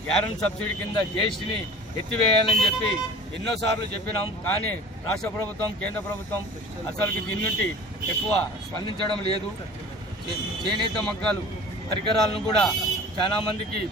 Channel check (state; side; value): normal; both; correlation 0.42